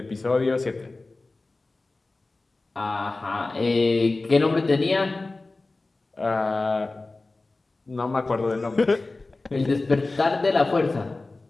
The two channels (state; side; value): quieter; right; 3.3 dB